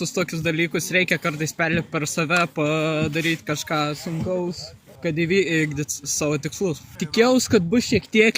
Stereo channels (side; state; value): both; identical; correlation 1.00